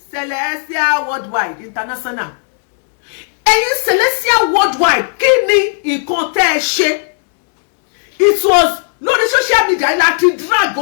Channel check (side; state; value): right; silent; 70 dB below the other